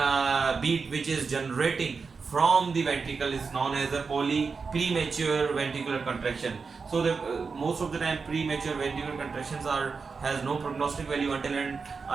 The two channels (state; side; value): quieter; left; 5.0 dB